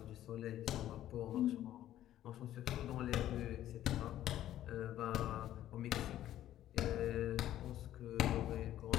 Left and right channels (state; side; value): quieter; right; 12.7 dB